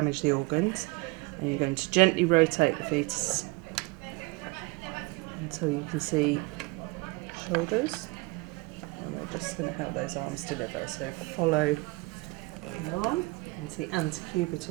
the organs. And you're going to gently rotate the fetus until you can see shoulders. And we're just going to help those arms deliver. So follow the arm into the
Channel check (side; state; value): left; quieter; 24.7 dB